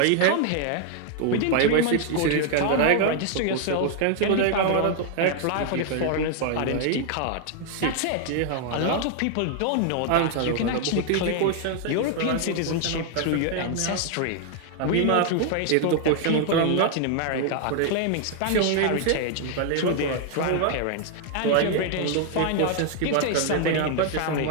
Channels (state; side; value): different; both; correlation 0.00